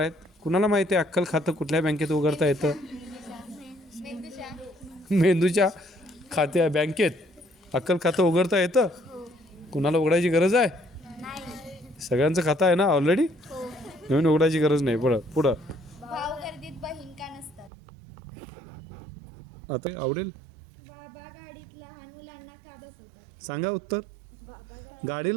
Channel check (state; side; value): drops out; left; at 17.7 s